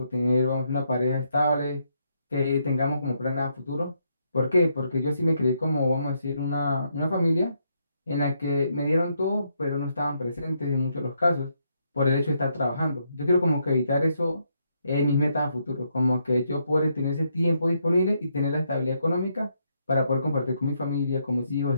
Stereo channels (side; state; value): both; inverted; correlation -0.77